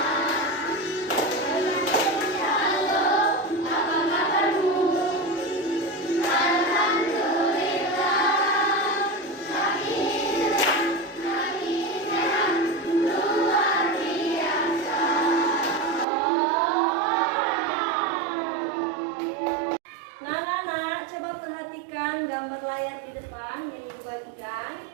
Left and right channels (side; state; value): left; drops out; at 16.1 s